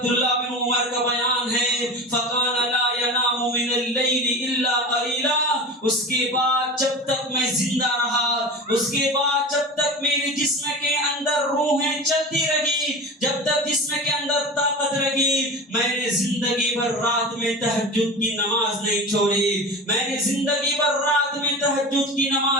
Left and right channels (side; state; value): both; normal; correlation 0.31